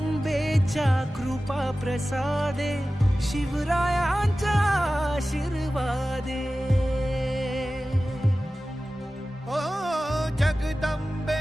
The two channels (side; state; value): both; normal; correlation 0.96